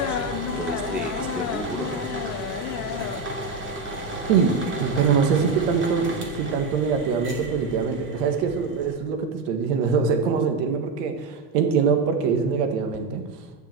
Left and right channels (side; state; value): left; quieter; 4.3 dB